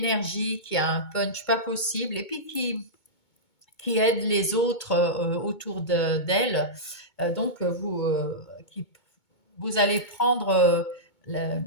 qui a un punch pas possible, et puis qui aide les autres autour d'elle. Donc, vous allez prendre, la-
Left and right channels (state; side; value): late; right; 2.2 ms